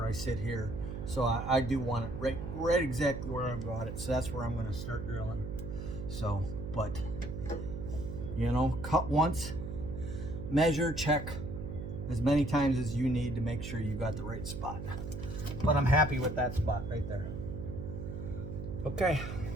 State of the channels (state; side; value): noise; right; hum, 7 dB below the sound